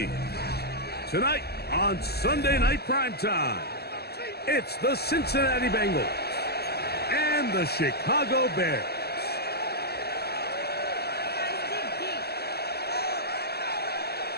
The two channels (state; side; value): late; right; 0.46 ms